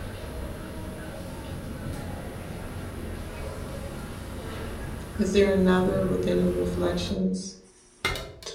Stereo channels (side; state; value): both; identical; correlation 1.00